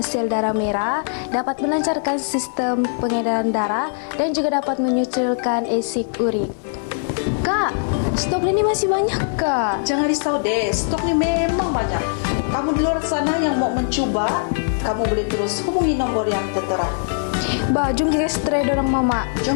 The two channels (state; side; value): silent; right; 57 dB below the other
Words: sel darah merah, dapat melancarkan sistem pengedaran darah dan juga dapat menyusulkan asid urik. Kak, stok ini masih banyak kak. Jangan risau deh, stok ni memang banyak. Kamu di luar sana yang mau mencuba, kamu boleh terus hubungi nombor yang tertera. Bah, jom kita try dorang mama.